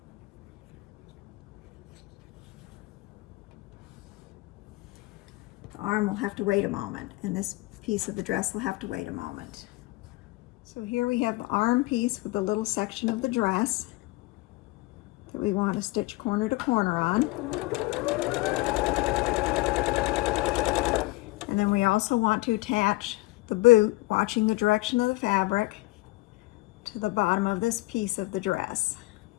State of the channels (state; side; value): quieter; right; 21.3 dB